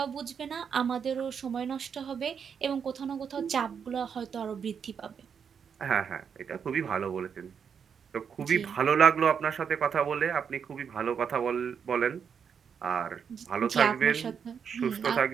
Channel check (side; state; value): left; quieter; 7.0 dB